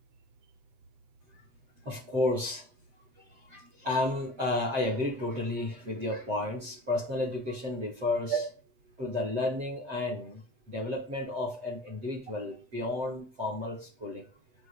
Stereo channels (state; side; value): late; left; 7.6 ms